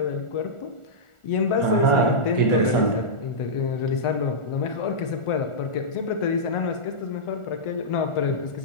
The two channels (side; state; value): right; late; 1.4 ms